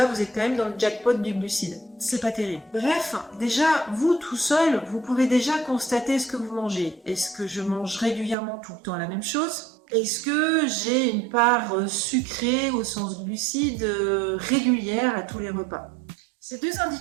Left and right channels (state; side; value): drops out; left; at 8.3 s